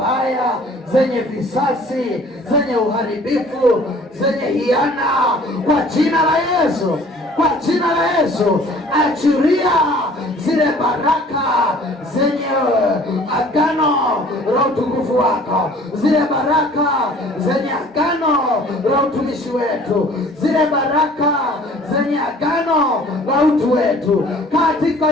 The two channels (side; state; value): both; normal; correlation 0.51